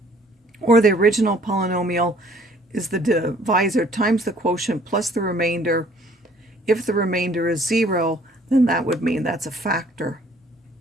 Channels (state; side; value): normal; both; correlation 0.58